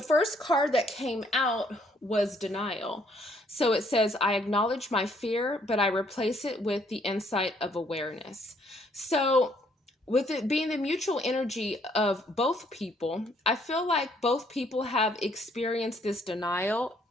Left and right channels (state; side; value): normal; both; correlation 0.66